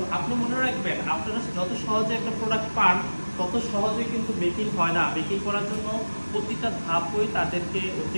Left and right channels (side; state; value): both; inverted; correlation -1.00